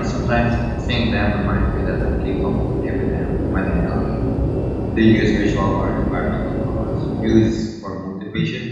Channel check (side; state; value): both; identical; correlation 1.00